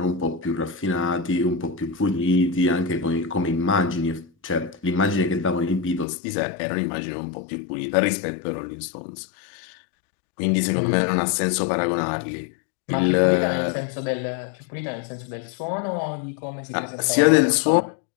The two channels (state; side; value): drops out; right; at 6.1 s